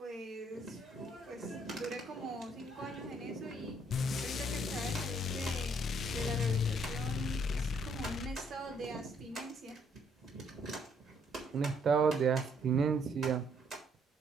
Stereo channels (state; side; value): normal; both; correlation 0.67